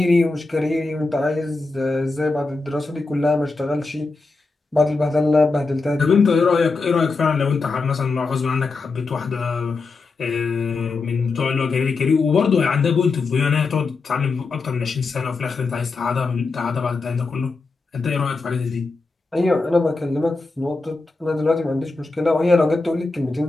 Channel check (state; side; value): quieter; right; 3.8 dB